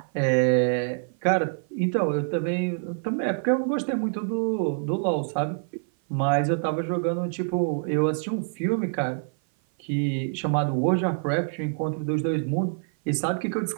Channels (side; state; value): left; silent; 56 dB below the other